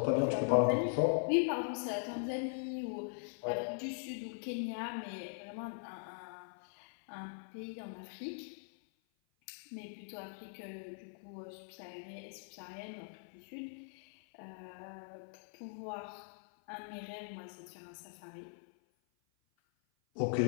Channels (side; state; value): right; silent; 51 dB below the other